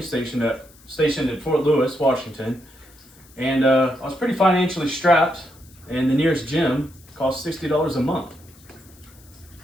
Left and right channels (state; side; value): noise; left; hiss, 26 dB below the sound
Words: stationed at Fort Lewis, Washington. And I was pretty financially strapped, and the nearest gym cost $60 a month.